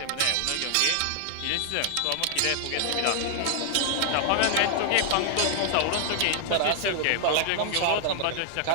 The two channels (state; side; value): different; both; correlation 0.00